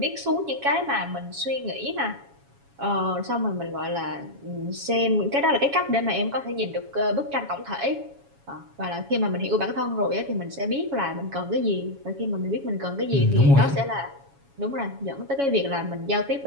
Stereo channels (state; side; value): late; left; 7.2 ms